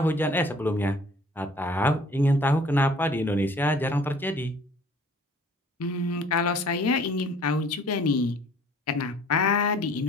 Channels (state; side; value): normal; both; correlation 0.53